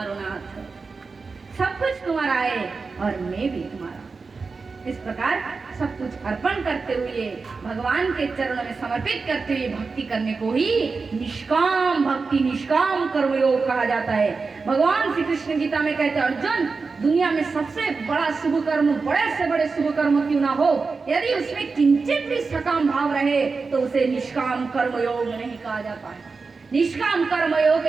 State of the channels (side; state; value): left; quieter; 4.4 dB